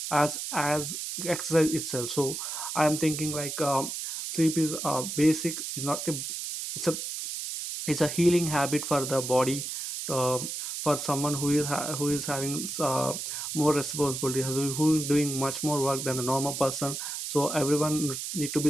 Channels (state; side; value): noise; right; hiss, 5 dB below the sound